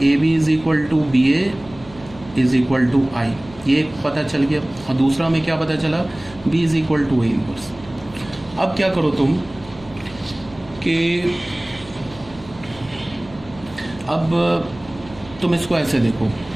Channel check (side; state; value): right; noise; hum, 20 dB below the sound